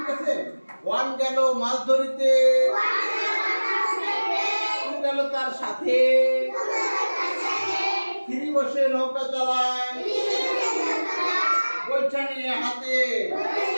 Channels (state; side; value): inverted; both; correlation -1.00